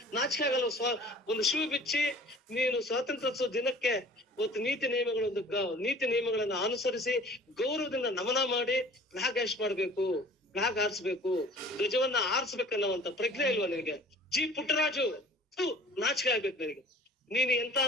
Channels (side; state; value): both; normal; correlation 0.47